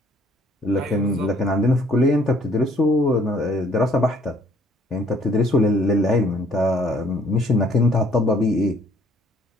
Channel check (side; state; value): both; normal; correlation 0.61